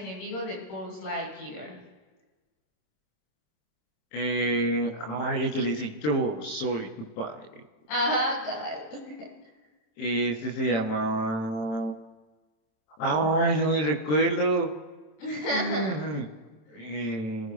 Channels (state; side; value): late; right; 27 ms